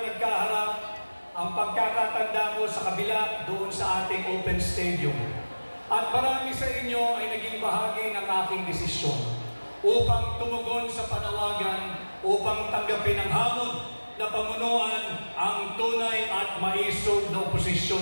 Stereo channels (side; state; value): both; inverted; correlation -1.00